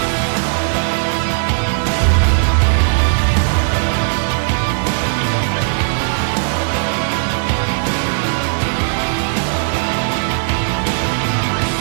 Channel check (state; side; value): silent; left; digital silence